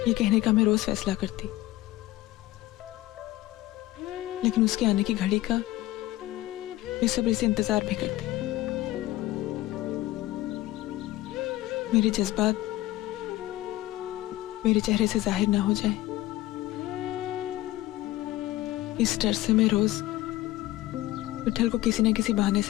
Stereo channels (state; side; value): quieter; right; 16.7 dB